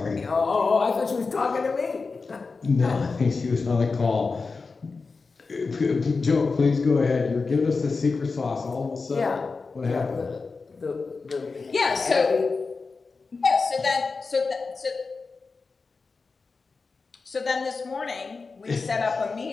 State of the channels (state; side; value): quieter; right; 4.3 dB